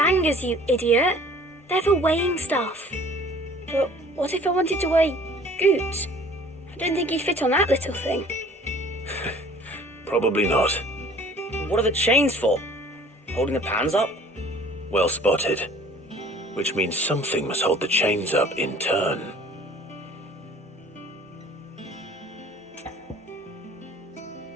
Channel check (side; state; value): both; normal; correlation 0.51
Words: you idiot. They're for weighing stuff. But what if I wanted to weigh Goots? I don't think he'd fit on that little thing. Probably not. What are the chains for? Holding the pans up? Well spotted. Which means something must hold the chains up in turn.